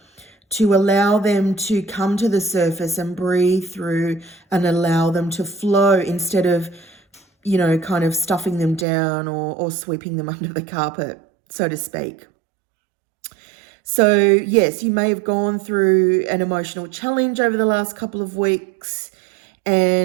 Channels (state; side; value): drops out; left; at 8.8 s